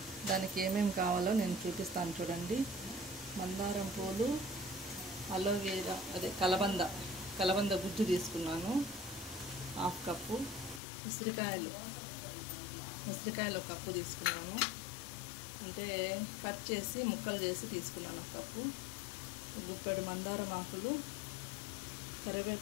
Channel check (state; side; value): drops out; right; at 10.8 s